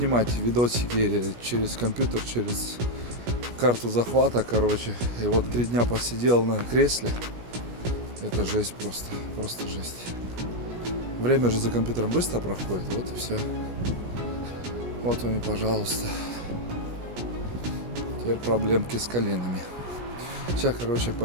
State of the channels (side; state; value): left; late; 17 ms